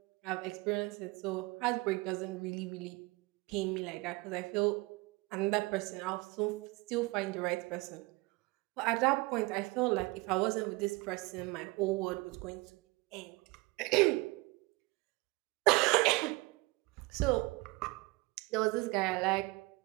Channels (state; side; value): quieter; left; 23.6 dB